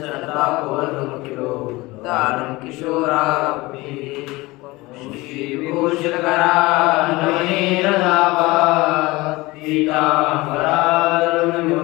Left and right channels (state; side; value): quieter; right; 21.4 dB